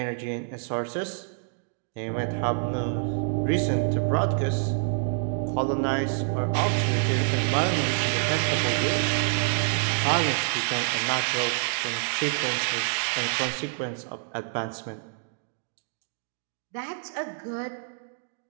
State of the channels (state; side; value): silent; left; digital silence